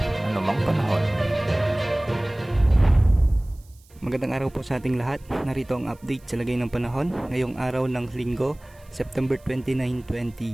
anumang panahon. Magandang araw po sa ating lahat. Narito ang update sa lagay ng panahon ngayong araw ng Linggo, September 29,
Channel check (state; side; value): noise; right; hiss, 30 dB below the sound